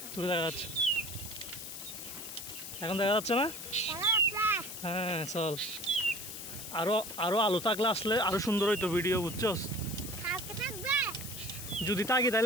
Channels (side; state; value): left; noise; hiss, 9 dB below the sound